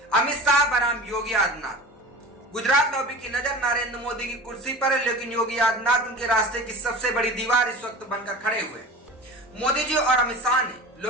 अमित शाह बनाम योगी आदित्यनाथ। गुजरात लॉबी की नजर नरेंद्र मोदी की कुर्सी पर है, लेकिन योगी आदित्यनाथ उनके रास्ते की सबसे बड़ी दीवार इस वक्त बनकर खड़े हुए हैं। मोदी जी और अमित शाह ने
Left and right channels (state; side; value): normal; both; correlation 0.36